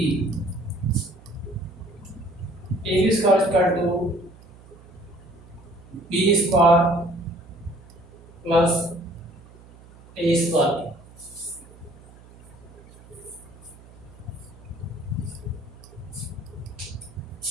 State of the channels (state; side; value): noise; right; hum, 22 dB below the sound